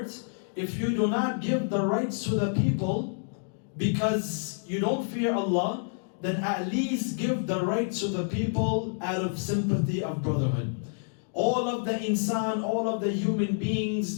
if you do not give the rights to the people because you don't fear Allah, then at least give the rights to the people out of sympathy of brotherhood. All of the insan, all of the human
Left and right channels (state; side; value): silent; right; digital silence